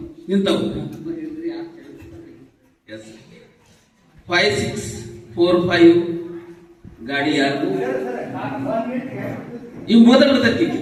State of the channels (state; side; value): identical; both; correlation 1.00